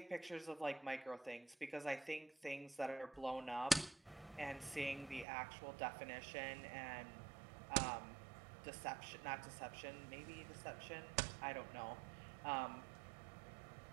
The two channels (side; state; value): left; drops out; at 5.2 s